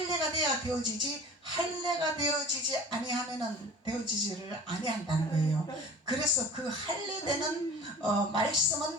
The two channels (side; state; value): both; normal; correlation 0.41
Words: 돼야 되어지지, 할례가 되어지지 아니하면은 되어지지를 아니한다는 거예요. 그래서 그 할례되는